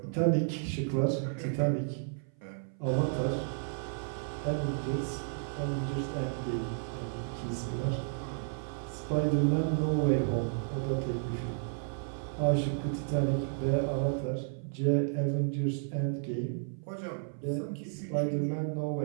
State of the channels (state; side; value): silent; left; 55 dB below the other